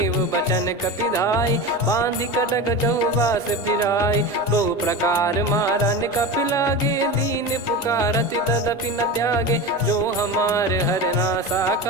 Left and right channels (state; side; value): normal; both; correlation 0.26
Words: बचन कपिधाई बांधि कटक चहुबास फिराई बहु प्रकार मारन कपि लागे दीन पुकारति तदपि न त्यागे जो हमार हरना